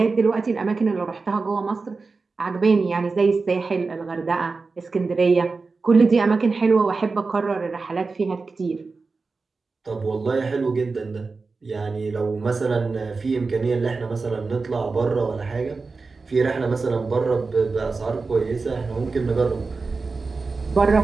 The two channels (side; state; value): left; quieter; 4.1 dB